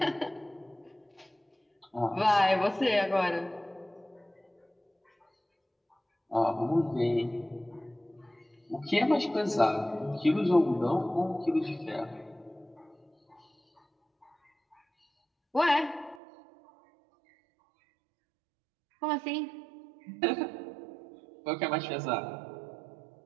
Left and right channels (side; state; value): left; drops out; at 16.2 s